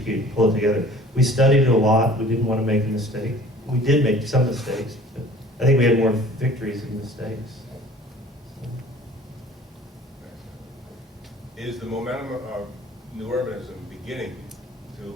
and pull it together. We studied it a lot. We didn't want to make a mistake. We did make some mistakes, but I think we had more victories than mistakes. Is the momentum of new urbanism beginning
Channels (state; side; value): normal; both; correlation 0.48